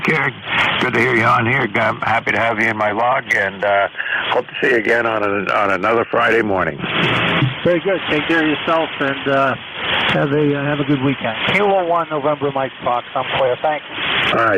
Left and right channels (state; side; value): identical; both; correlation 1.00